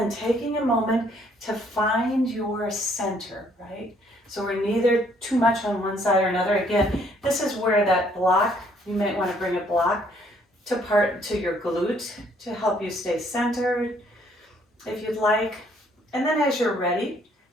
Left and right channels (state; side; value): normal; both; correlation 0.65